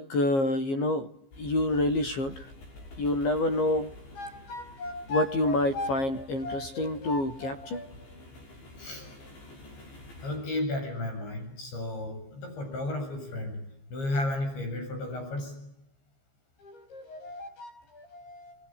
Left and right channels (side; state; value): right; late; 15 ms